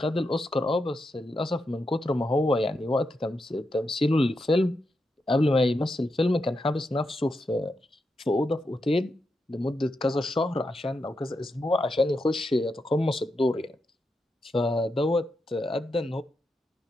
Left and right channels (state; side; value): normal; both; correlation 0.85